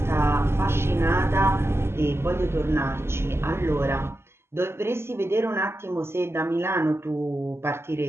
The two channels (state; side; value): late; left; 0.12 ms